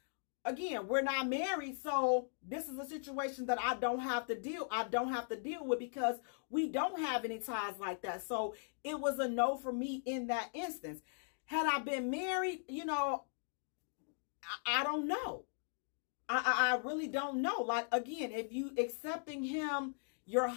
again, we're not married. So this is a situation that I don't have to deal with, because we don't have any ties like that. So it was a no for me in that instance. Had I been married, you know, I don't know. I really don't know. Like, again, if you accepting him, your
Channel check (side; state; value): right; silent; digital silence